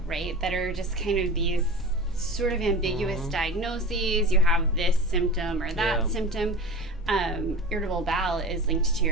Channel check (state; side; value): normal; both; correlation 0.32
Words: right, that are just kind of these sort of ambiguous diagnoses. You have this symptom or that symptom. Irritable bowel is linked to